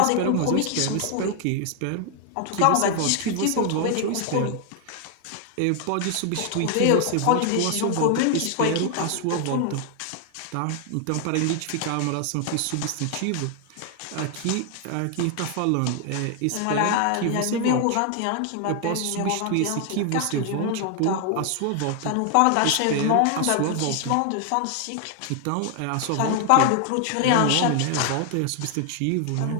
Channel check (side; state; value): both; different; correlation 0.00